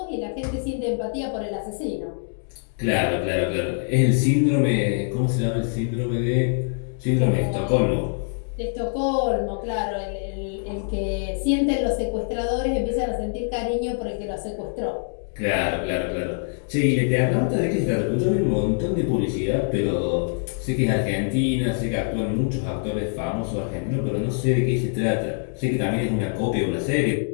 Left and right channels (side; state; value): right; silent; 62 dB below the other